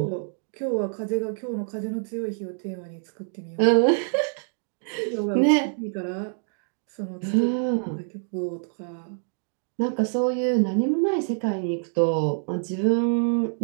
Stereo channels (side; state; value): left; silent; digital silence